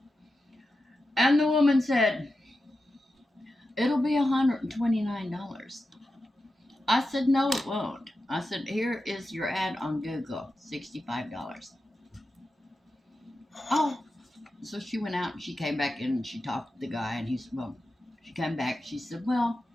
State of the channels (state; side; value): normal; both; correlation 0.91